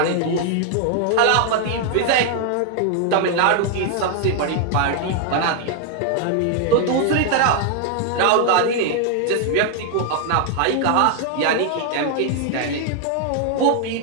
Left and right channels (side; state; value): both; different; correlation 0.00